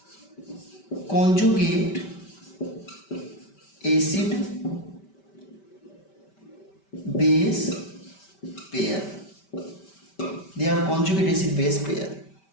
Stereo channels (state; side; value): late; right; 5.1 ms